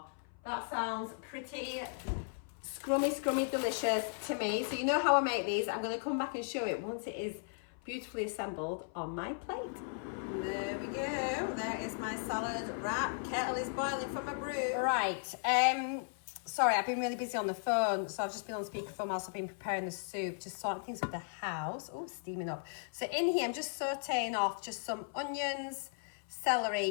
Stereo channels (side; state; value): right; silent; 54 dB below the other